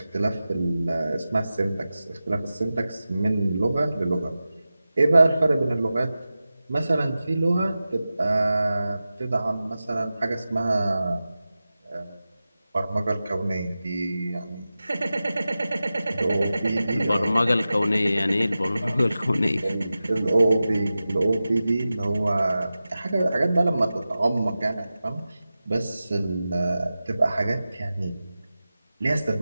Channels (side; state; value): both; inverted; correlation -0.94